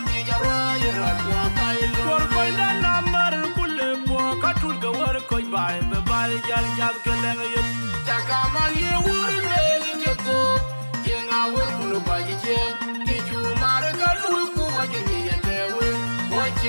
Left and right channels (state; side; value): inverted; both; correlation -1.00